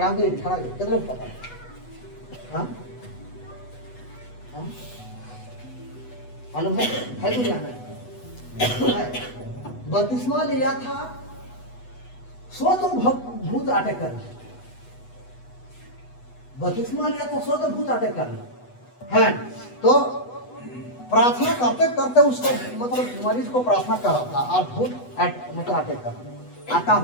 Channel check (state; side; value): late; right; 8.1 ms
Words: कितने लोग पता है। हाँ मालूम है दुनिया में बपतिस्मा लिया था, सो तो भूत अटैक करना, बपतिस्मा लिया था, सो तो भूत अटैक करना है। तो प्रार्थना करते करते उसको मतलब मरीज को प्रार्थना कर रहा था और भूत मतलब अटैक करना,